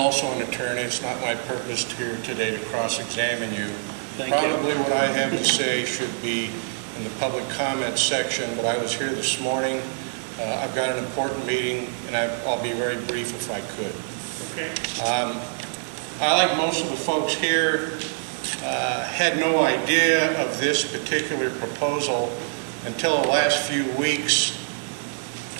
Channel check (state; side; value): silent; left; digital silence